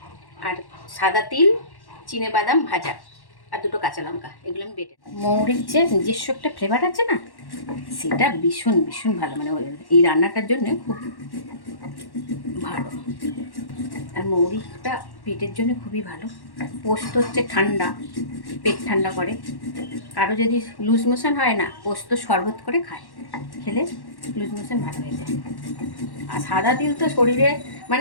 আর সাদা তিল, চিনে বাদাম ভাজা আর দুটো কাঁচা লঙ্কা, এগুলো আমি বেটে। মৌরির যে নিজস্ব একটা ফ্লেভার আছে না, সেটা ভীষণ ভীষণ ভালো, মানে এই রান্নাটার জন্য খুব ভালো। আর মৌরিটা পেটের জন্য খুবই ভালো। পোস্ত হচ্ছে ঠান্ডা, পেট ঠান্ডা করে। কারো যদি লুজ মোশন হয় না, পোস্ত শরবত করে খায়, খেলে লুজ মোশন ভালো হয়ে যায়। আর সাদা তিল তো শরীরে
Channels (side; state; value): right; late; 1.1 ms